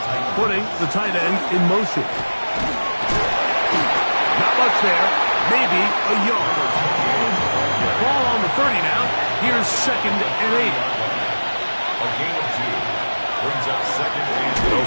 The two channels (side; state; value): both; inverted; correlation -1.00